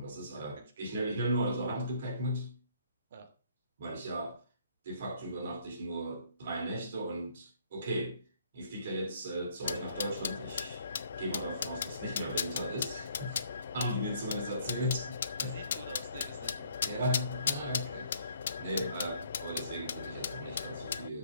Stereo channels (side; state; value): both; inverted; correlation -0.63